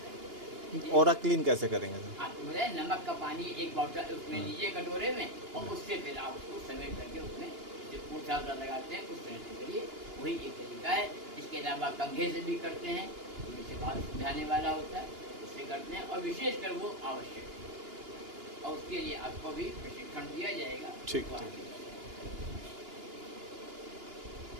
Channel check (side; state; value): left; late; 2.9 ms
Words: देता है। ऑरा क्लीन कैसे करेंगे सर? आपको बताए नमक का पानी एक बॉटल उसमें लीजिए कटोरे में, और उससे फिर आप उसको समेट करके उसमें जो पूछा लगाते हैं उस तरह से करिए, वही एक तरीका है। इसके अलावा कंघे से भी करते हैं, जिससे बात समझाने वाला होता है, उससे करते हैं, और विशेषकर वो आवश्यक है, और उसके लिए आपको भी प्रशिक्षण दिया जाएगा। ठीक, वो ठीक। आगे